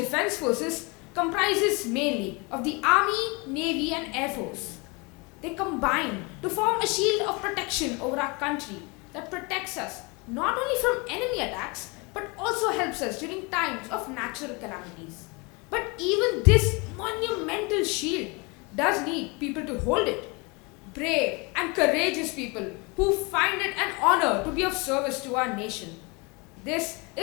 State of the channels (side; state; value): right; quieter; 28.8 dB